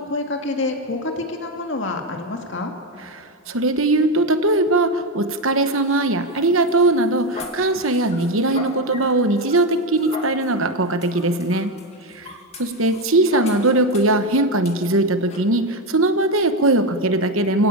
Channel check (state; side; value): normal; both; correlation 0.11